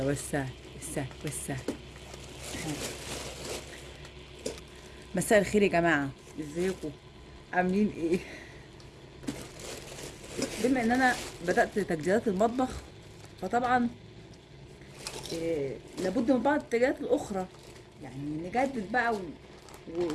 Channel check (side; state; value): both; identical; correlation 1.00